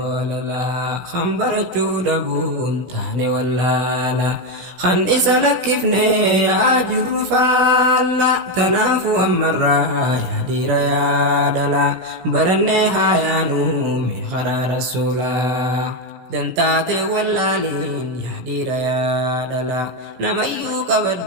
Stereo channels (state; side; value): late; left; 16 ms